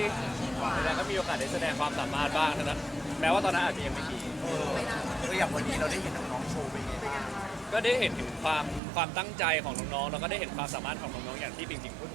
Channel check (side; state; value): left; drops out; at 8.8 s